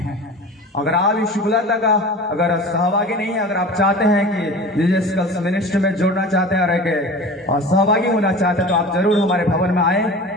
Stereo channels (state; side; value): normal; both; correlation 0.36